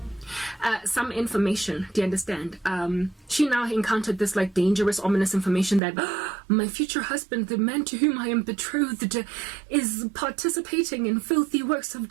Some information, do you understand? She now encountered this like dangerous, ominous information that my future husband, the man to whom I am betrothed, is participating in filthy works of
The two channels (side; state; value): left; drops out; at 5.8 s